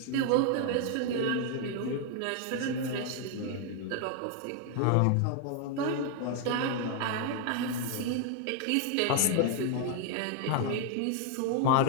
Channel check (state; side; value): different; both; correlation 0.00